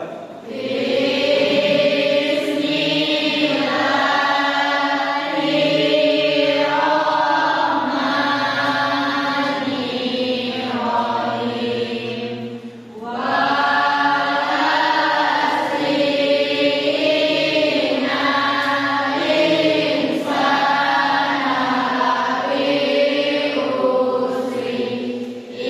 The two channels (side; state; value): both; identical; correlation 1.00